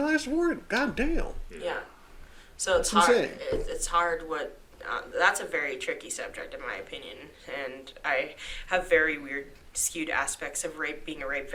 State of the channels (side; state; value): both; identical; correlation 1.00